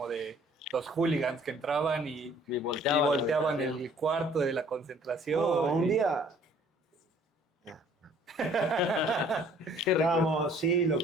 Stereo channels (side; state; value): both; normal; correlation 0.57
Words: de los hooligans que entraban y volteaban el cuarto de la concentración. Un día estábamos, sí, lo